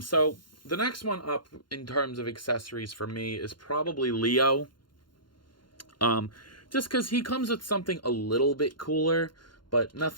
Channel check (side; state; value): right; late; 0.72 ms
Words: the next one up in terms of accessories for me is probably Leo. Just because he comes with something a little bit cooler, but